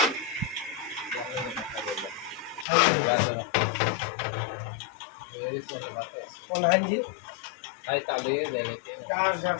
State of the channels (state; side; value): drops out; right; at 2.7 s